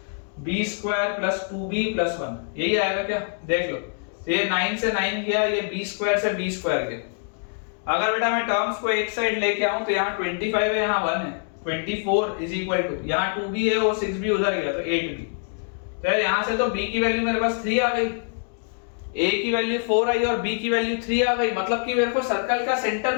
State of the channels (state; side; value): silent; right; 61 dB below the other